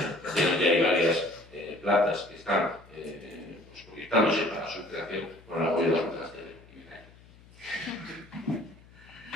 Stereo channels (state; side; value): noise; left; hum, 24 dB below the sound